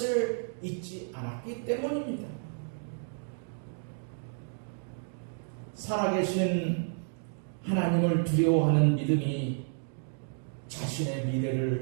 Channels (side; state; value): left; silent; digital silence